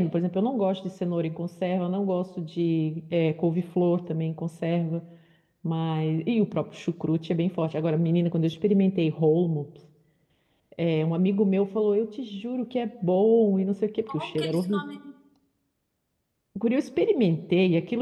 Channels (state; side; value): identical; both; correlation 1.00